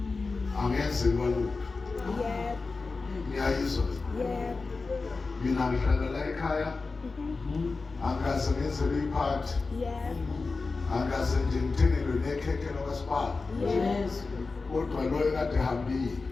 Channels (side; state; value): right; quieter; 4.0 dB